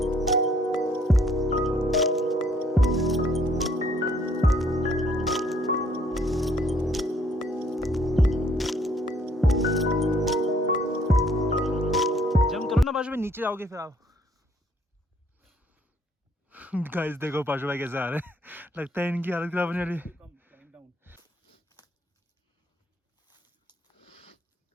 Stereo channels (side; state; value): both; normal; correlation 0.64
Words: जंप करो ना पाशु भाई, नीचे जाओगे फिर आप। गाइस देखो पाशु भाई कैसे आ रहे हैं। लगता है इनकी हालत खराब होने वाली है।